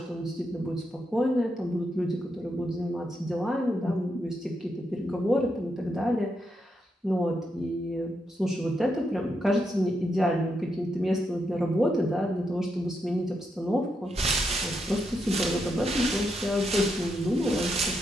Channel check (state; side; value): normal; both; correlation 0.82